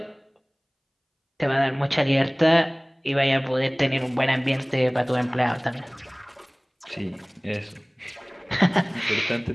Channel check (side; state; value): both; identical; correlation 1.00